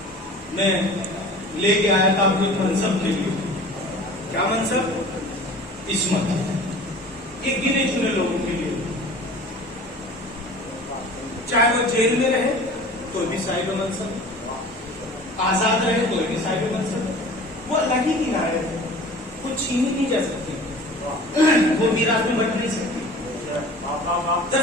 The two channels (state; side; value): normal; both; correlation 0.42